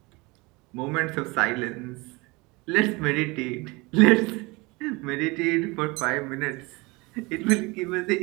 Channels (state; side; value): quieter; left; 25.0 dB